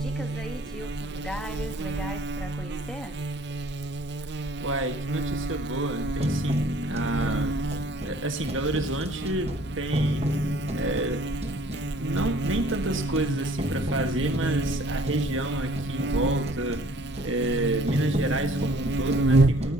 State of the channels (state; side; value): normal; both; correlation 0.56